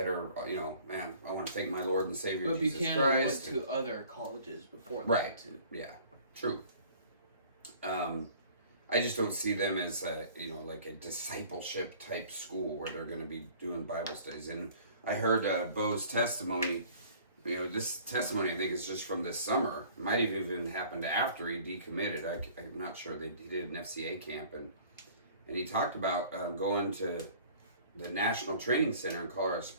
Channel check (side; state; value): both; inverted; correlation -0.51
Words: are, you know, man, I want to thank my Lord and Savior But Jesus Buchanan Christ. went to other colleges before that, right. too. Yeah, true. I just don't see them as a, you know, like a discipleship type school where they're going to be doing Bible studies. And I heard Bo's testimony. You know, this testimony I think is just from this summer. It might have even happened after he decommitted. I'm not sure. He did an FCA camp, and he talked about going to the National Training Center in Colorado